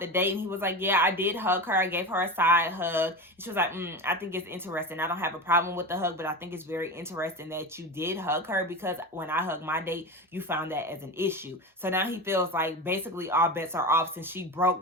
date. And he was like, yeah, I did hug her. I gave her a side hug. And she was like, I think it's interesting. I don't have a problem with the hug, but I think it's very interesting that you did hug her because when I hugged my date, you found that as an issue. So now he feels like basically all bets are off since she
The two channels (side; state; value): both; normal; correlation 0.25